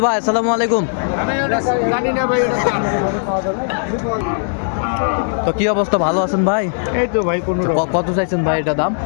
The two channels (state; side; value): silent; right; digital silence